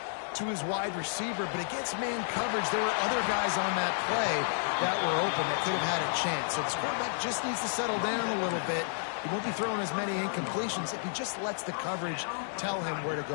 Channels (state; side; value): silent; right; digital silence